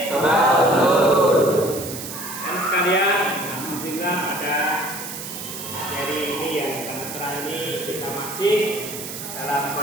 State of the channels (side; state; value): right; noise; hiss, 9 dB below the sound